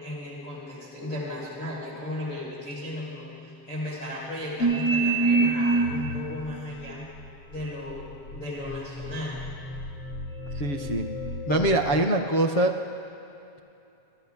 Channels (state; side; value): late; right; 7.1 ms